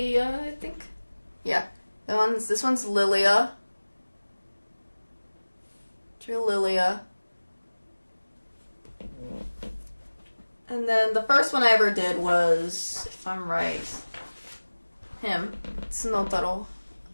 I think. Yeah, this one's Lilia. Drew Lilia. And then the first one I ever did was, if I'm right, him. Snotaro,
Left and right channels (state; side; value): inverted; both; correlation -1.00